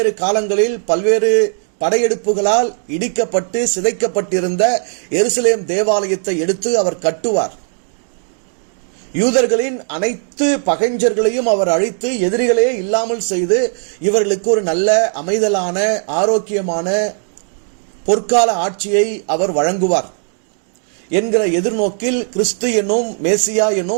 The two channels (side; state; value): left; silent; 56 dB below the other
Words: காலங்களில் பல்வேறு படையெடுப்புகளால் இடிக்கப்பட்டு சிதைக்கப்பட்டிருந்த எருசலேம் தேவாலயத்தை எடுத்து அவர் கட்டுவார். யூதர்களின் அனைத்து பகைஞர்களையும் அவர் அழித்து எதிரிகளே இல்லாமல் செய்து இவர்களுக்கு ஒரு நல்ல அமைதலான ஆரோக்கியமான பொற்கால ஆட்சியை அவர் வழங்குவார் என்கிற எதிர்நோக்கில் கிறிஸ்து என்னும் மேசியா